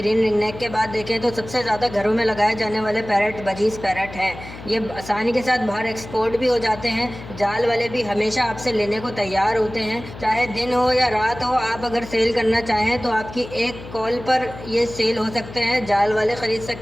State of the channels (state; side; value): noise; left; hum, 14 dB below the sound